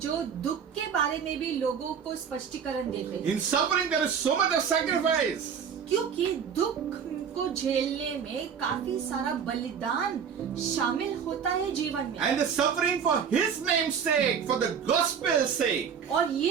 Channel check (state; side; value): quieter; left; 7.2 dB